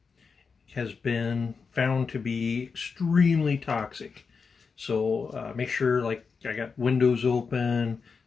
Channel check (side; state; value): right; quieter; 5.2 dB